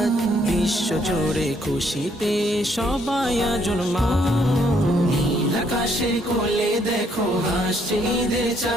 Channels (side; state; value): both; normal; correlation 0.69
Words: বিশ্ব জুড়ে খুশিতে সবাই আজ উন্মাদ। নীল আকাশের কোলে দেখো হাসছে ঈদের